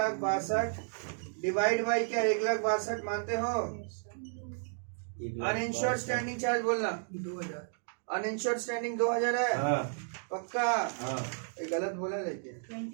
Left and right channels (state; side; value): silent; left; digital silence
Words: डिवाइड बाई क्या? 1,62,000 मानते हो? अनइंश्योर्ड स्टैंडिंग चार्ज बोलना। 2000। अनइंश्योर्ड स्टैंडिंग 2000 है। हाँ पक्का? हाँ। ये गलत बोला लेकिन